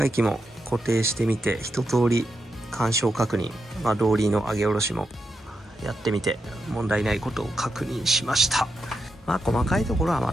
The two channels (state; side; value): normal; both; correlation 0.85